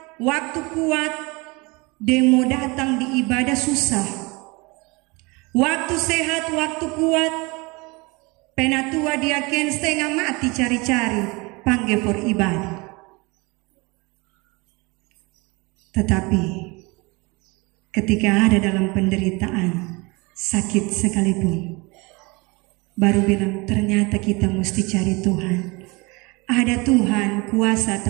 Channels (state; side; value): quieter; left; 26.2 dB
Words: waktu kuat, demo datang di ibadah susah. Waktu sehat, waktu kuat, penatua diaken setengah mati cari-cari, panggil for ibadah. Tetapi ketika ada dalam penderitaan, sakit sekalipun, baru bilang ternyata kita mesti cari Tuhan. Ada Tuhan, kuasa